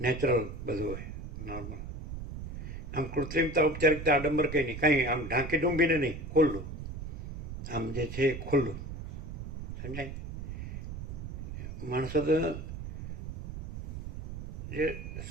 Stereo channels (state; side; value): noise; right; rumble, 7 dB below the sound